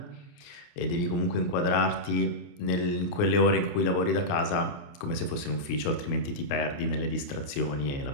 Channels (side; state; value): right; late; 29 ms